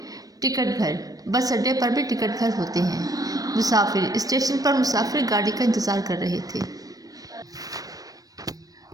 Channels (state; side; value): late; left; 0.18 ms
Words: टिकट घर, बस अड्डे पर भी टिकट घर होते हैं। मुसाफिर, स्टेशन पर मुसाफिर गाड़ी का इंतज़ार कर रहे थे।